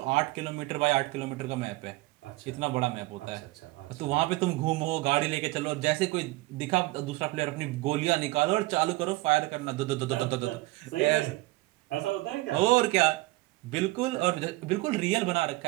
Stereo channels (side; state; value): left; quieter; 20.6 dB